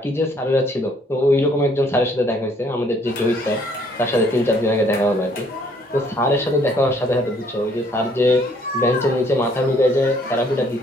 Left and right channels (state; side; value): normal; both; correlation 0.63